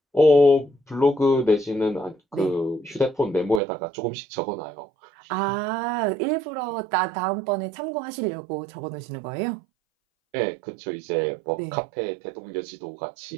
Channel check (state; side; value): drops out; left; at 3.6 s